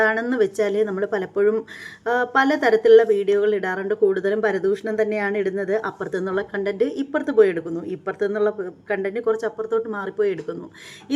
വെച്ചാൽ നമ്മൾ പലപ്പോഴും പലതരത്തിലുള്ള വീഡിയോകൾ ഇടാറുണ്ട്. കൂടുതലും പരദൂഷണം തന്നെയാണ് ഇടുന്നത്. അപ്പുറത്തു നിന്നുള്ള കണ്ടൻറ്റ് ഇപ്പുറത്ത് പോയി എടുക്കുന്നു, ഇപ്പുറത്തു നിന്നുള്ള കണ്ടൻറ്റ് കുറച്ച് അപ്പുറത്തോട്ട് മാറിപ്പോയി എടുക്കുന്നു.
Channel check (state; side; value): identical; both; correlation 1.00